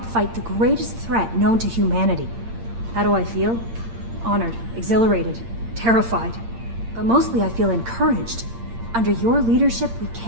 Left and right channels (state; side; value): late; left; 8.7 ms